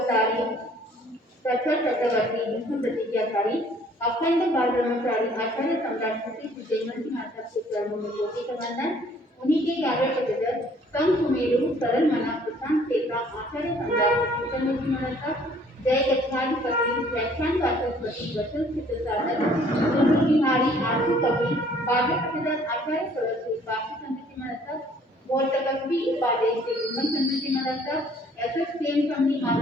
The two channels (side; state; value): both; normal; correlation 0.58